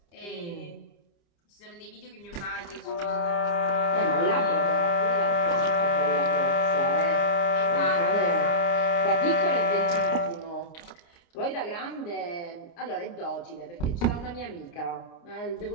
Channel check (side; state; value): right; late; 29 ms